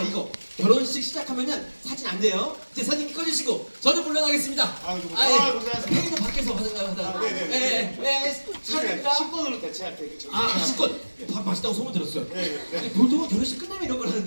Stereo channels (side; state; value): both; inverted; correlation -1.00